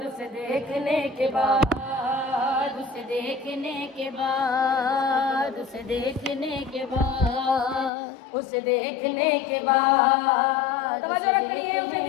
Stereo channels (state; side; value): drops out; right; at 7.9 s